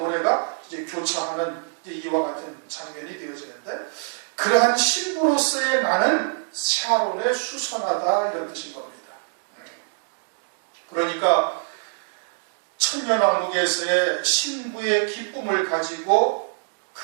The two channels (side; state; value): left; silent; digital silence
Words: 이제 교차하는 이제 이와 같은 장면이 되어지는데, 그러한 신부로서의 나는 샤론에 수선하다 이런 뜻인 겁니다. 그러니까 천년왕국에서의 신부의 기쁨을 가지고